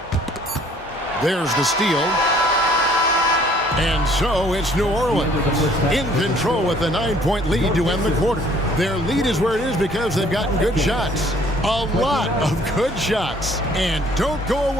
There's the steal. And so it's New Orleans in control with a 9-point lead to end the quarter. Their lead is where it is because they've gotten good shots. A lot of good shots. And don't go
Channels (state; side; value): normal; both; correlation 0.58